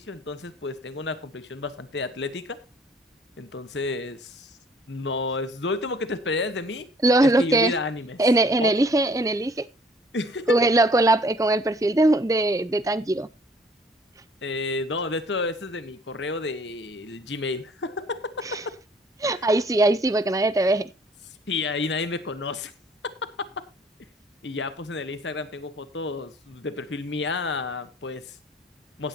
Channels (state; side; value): normal; both; correlation 0.57